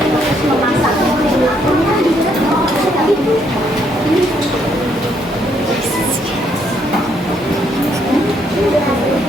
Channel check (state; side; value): normal; both; correlation 0.72